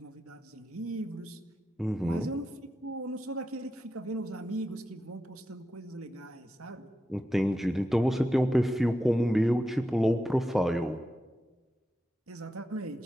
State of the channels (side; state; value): both; normal; correlation 0.89